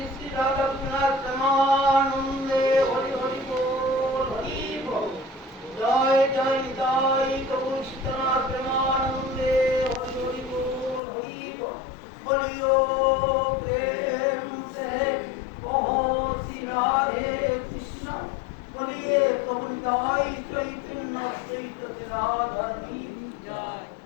শ্রী রাধা রঘুনাথ প্রেমানন্দে হরি হরি বল হরি বল জয় জয় জয় প্রভু সীতানাথ প্রেমানন্দে হরি হরি বল হরি বল বলিও প্রেম সে কहो শ্রী রাধে কৃষ্ণ বলিए প্রভু নিতাই চৈতন্য চৈত রাধারণী জয়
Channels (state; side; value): drops out; right; at 11.0 s